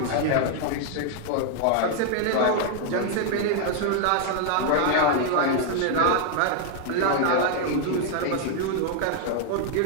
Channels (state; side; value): different; both; correlation 0.00